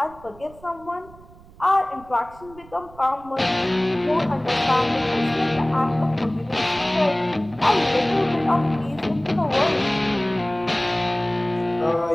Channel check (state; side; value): noise; right; rumble, 22 dB below the sound